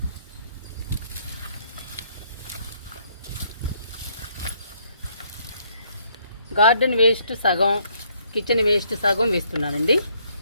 గార్డెన్ వేస్ట్ సగం, కిచెన్ వేస్ట్ సగం వేస్తున్నానండి.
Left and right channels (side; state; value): both; inverted; correlation -0.68